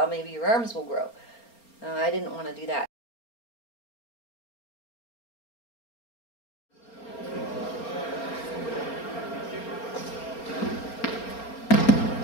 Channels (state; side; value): late; right; 4.3 ms